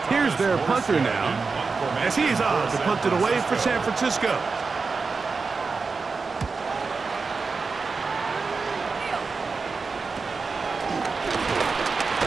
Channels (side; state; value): left; quieter; 4.5 dB